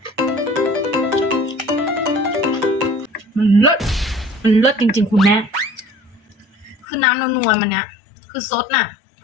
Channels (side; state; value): right; drops out; at 6.9 s